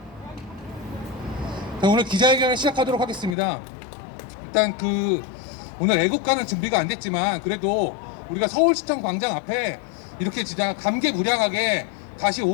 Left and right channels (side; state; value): right; drops out; at 3.4 s